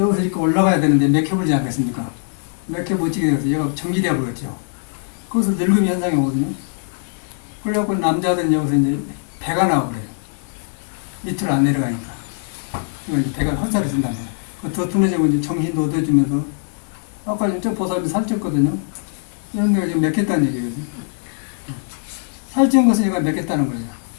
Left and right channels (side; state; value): right; silent; digital silence